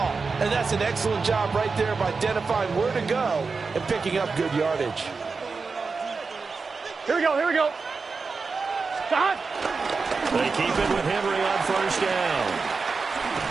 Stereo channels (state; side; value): quieter; left; 4.6 dB